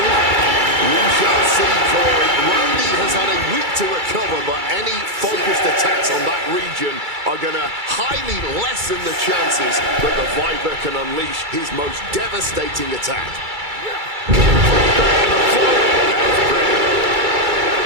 We shall see, Corey. Randy has had a week to recover, but any focused attacks on that region are going to highly lessen the chances that the Viper can unleash his most devastating attack.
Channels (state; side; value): late; left; 2.3 ms